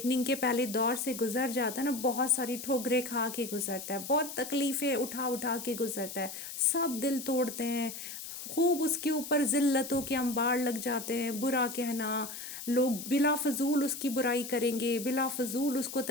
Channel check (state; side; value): noise; left; hiss, 9 dB below the sound